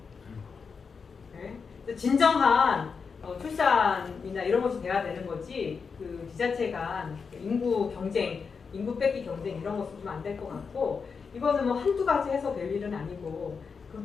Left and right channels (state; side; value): quieter; right; 5.5 dB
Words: 네? 진정한 출산이나 이런 것이 돼야 되는 거지. 그 지자체 간 인구 경쟁, 인구 뺏기 경쟁 이런 것은 좀 안 될 것 같고 이거는 뭐 한두 가지 해서 될 일은 아니고